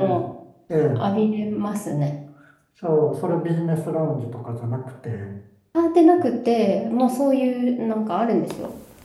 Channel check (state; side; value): identical; both; correlation 1.00